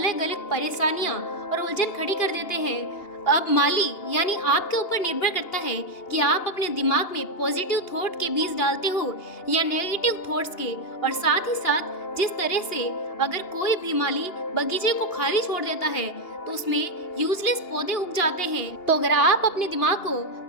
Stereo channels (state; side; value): late; right; 2.8 ms